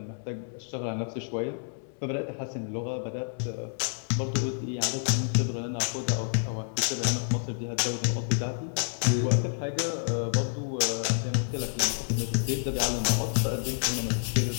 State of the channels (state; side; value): silent; right; digital silence